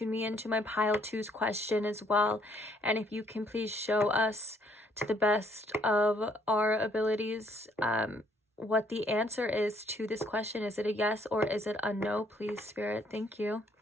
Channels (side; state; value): both; normal; correlation 0.66